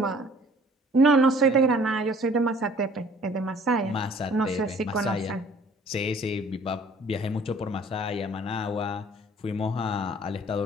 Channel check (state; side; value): normal; both; correlation 0.54